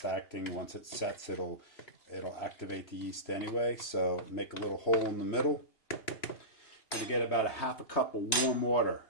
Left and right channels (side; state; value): right; late; 3.1 ms